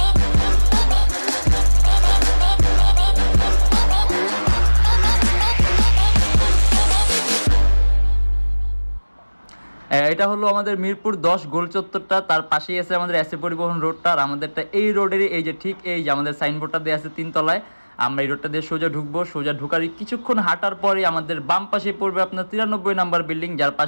এটা হলো আমাদের মিরপুর 10 গোল চত্বরটা, তার পাশেই আছে আমাদের এসএ পরিবহন রোডটা। আর আমাদেরটা এই রোডেরই এই যে ঠিক এই যে আমাদের সাইনবোর্ডটা দেওয়া আছে 3 তলায়। আমরা এই রোডটা দিয়ে সোজা ঢুকবো, সোজা ঢুকার কিছুক্ষণ হাঁটার পরে আমাদের বাম পাশে পড়বে আপনার 93 নাম্বার বিল্ডিং, যার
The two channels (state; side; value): inverted; both; correlation -1.00